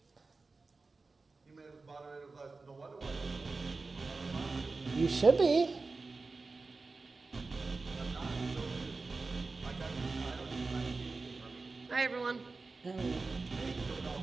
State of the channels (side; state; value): left; quieter; 3.8 dB